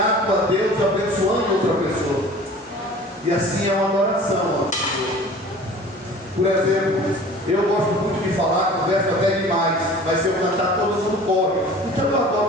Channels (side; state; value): both; normal; correlation 0.44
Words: a Deus, abençoando outra pessoa. E assim é uma adoração ao Senhor. Por exemplo, eu gosto muito de falar, converso até demais, mas se eu cantar todo mundo corre. Então eu